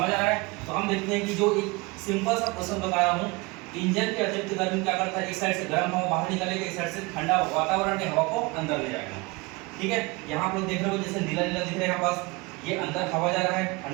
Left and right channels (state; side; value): quieter; left; 25.4 dB